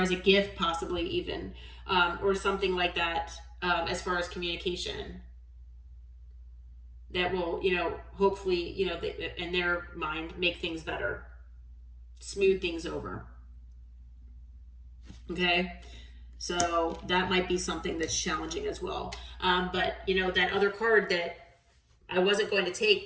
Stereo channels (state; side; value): identical; both; correlation 1.00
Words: as a gift, possibly even, or something like that, as far as communication that will, hopefully, in their mind, make things better, smooth things over. Okay. So that might be something that's challenging as well. But that other card that I wasn't going to take,